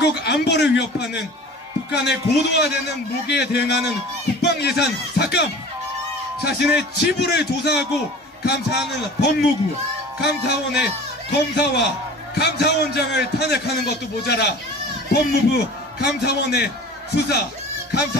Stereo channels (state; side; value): normal; both; correlation 0.41